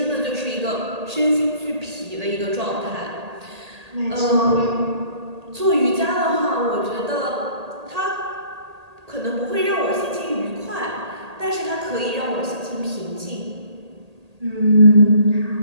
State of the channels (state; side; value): late; left; 1.8 ms